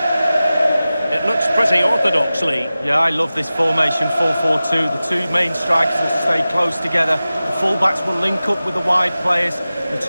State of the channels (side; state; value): both; inverted; correlation -0.96